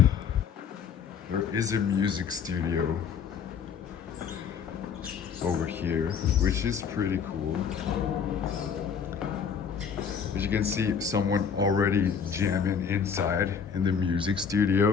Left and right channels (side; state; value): right; quieter; 6.8 dB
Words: there is a music studio over here, which is pretty cool. As you can see, someone already jamming inside in the music